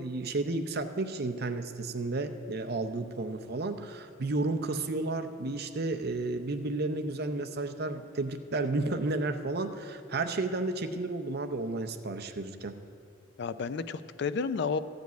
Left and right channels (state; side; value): normal; both; correlation 0.34